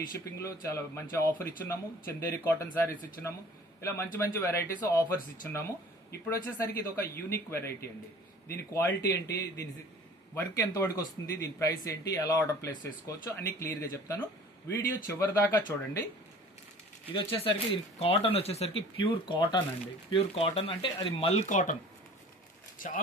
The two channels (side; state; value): both; normal; correlation 0.47